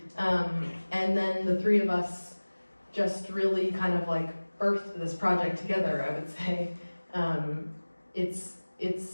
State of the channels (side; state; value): both; inverted; correlation -1.00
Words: And then the three of us just really kind of like birthed this project together, I would say. I'm